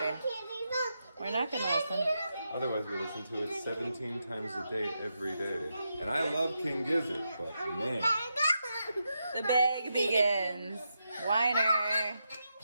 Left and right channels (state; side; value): inverted; both; correlation -0.85